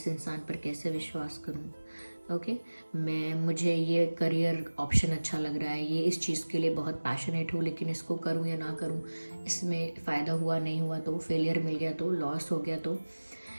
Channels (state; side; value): inverted; both; correlation -1.00